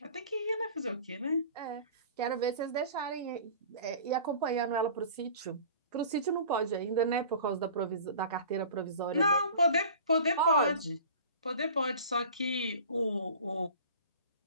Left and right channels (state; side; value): inverted; both; correlation -0.42